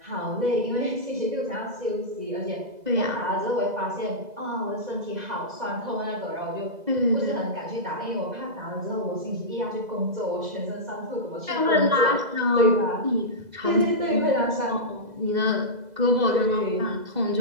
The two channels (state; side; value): late; left; 2.0 ms